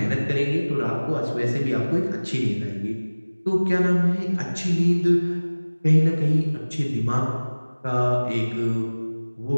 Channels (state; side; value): inverted; both; correlation -1.00